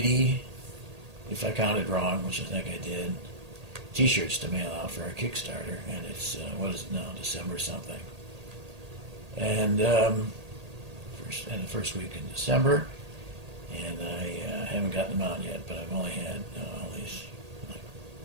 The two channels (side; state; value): left; late; 1.8 ms